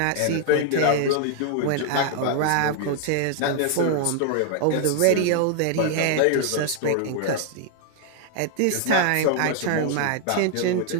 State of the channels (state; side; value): different; both; correlation 0.00